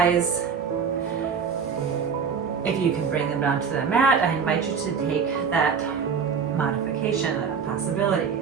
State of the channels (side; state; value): left; quieter; 6.3 dB